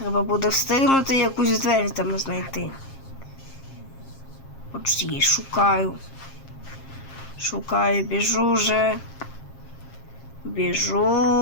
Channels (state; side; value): late; right; 7.5 ms